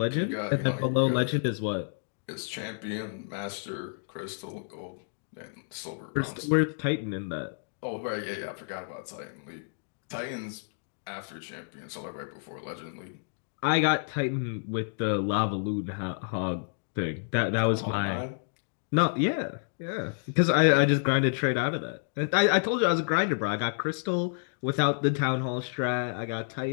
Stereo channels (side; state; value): right; silent; digital silence